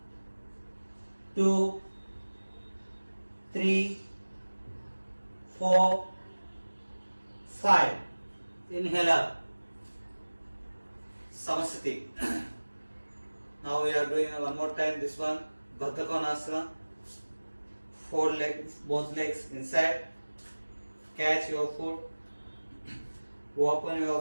2, 3, 4, 5. Inhale up. Samsthiti. Now we are doing one more time this one. Baddha Konasana. Fold legs, both legs inside. Catch your foot. Open your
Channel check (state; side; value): inverted; both; correlation -1.00